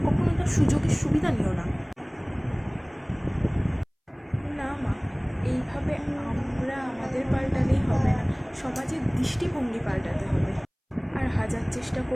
কখনো তার সুযোগের সুবিধা নিও না? না মা, এইভাবে আমরা আমাদের পাল্টালেই হবে না, সমাজের দৃষ্টিভঙ্গি পাল্টাতে হবে। আর হাজার চেষ্টা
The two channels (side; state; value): both; identical; correlation 1.00